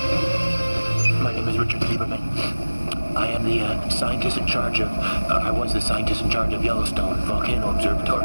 My name is Richard Lieberman. I am the scientist in charge of, I was the scientist in charge of Yellowstone Volcano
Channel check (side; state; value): both; inverted; correlation -1.00